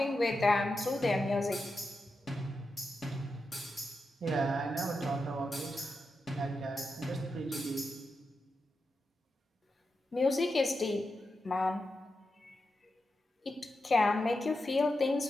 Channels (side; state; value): both; normal; correlation 0.88